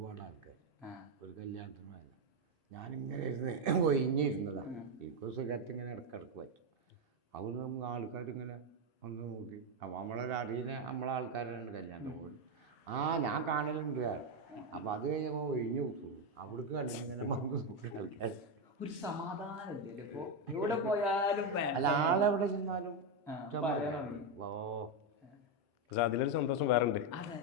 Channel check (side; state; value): both; normal; correlation 0.06